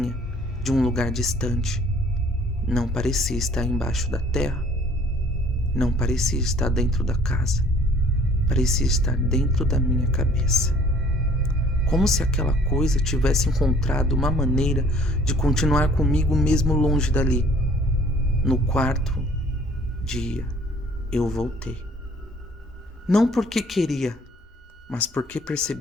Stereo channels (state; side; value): normal; both; correlation 0.55